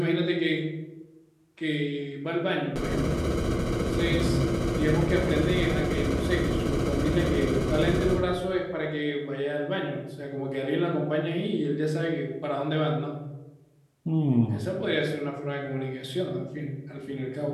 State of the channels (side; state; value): both; identical; correlation 1.00